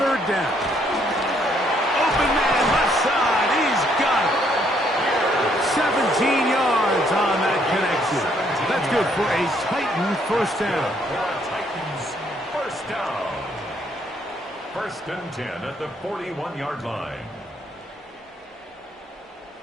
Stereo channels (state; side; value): normal; both; correlation 0.69